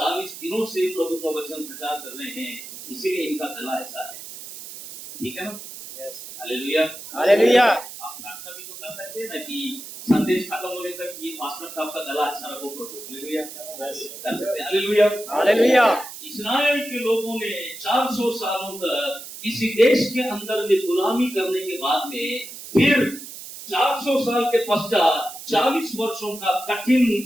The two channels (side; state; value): right; noise; hiss, 12 dB below the sound